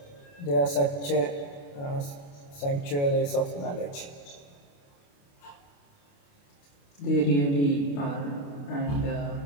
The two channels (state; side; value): late; right; 28 ms